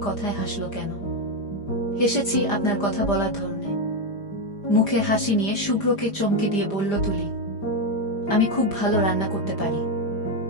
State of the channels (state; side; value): late; right; 5.0 ms